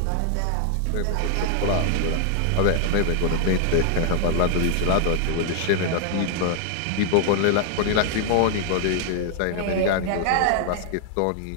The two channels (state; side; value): different; both; correlation 0.00